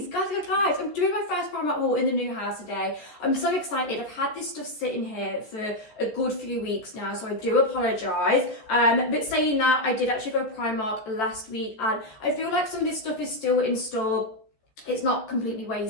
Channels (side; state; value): right; late; 14 ms